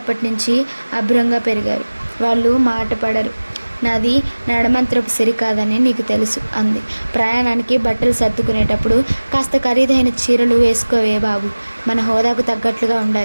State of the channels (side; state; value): both; inverted; correlation -1.00